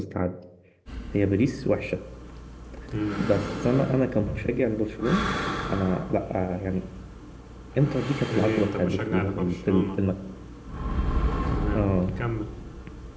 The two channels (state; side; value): identical; both; correlation 1.00